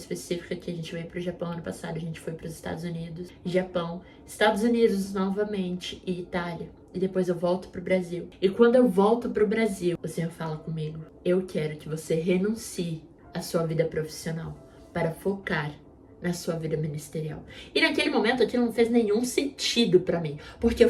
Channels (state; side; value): identical; both; correlation 1.00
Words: que a gente veio para o Japão ano passado, a gente foi para os Estados Unidos, Japão, Estados Unidos novamente e Itália. E depois eu volto pro Brasil. E quando eu volto pro Brasil, o Senhor fala comigo: eu quero que você renuncie à sua vida profissional para focar na sua vida ministerial. E naquele momento aquilo não fez nenhum sentido pra mim, porque eu